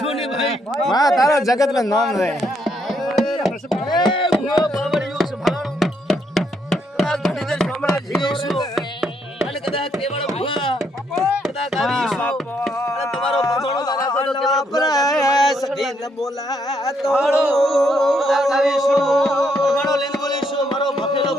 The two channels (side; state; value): both; normal; correlation 0.74